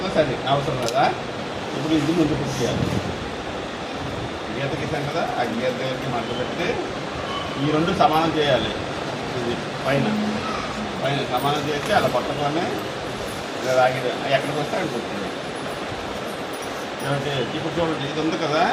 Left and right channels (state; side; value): identical; both; correlation 1.00